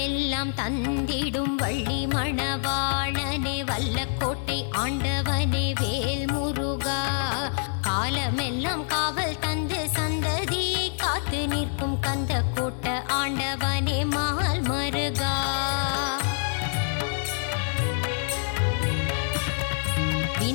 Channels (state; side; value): silent; right; 61 dB below the other